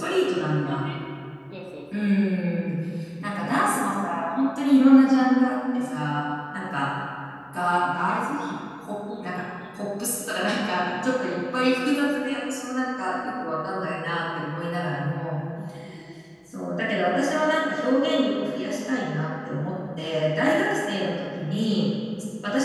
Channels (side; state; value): both; identical; correlation 1.00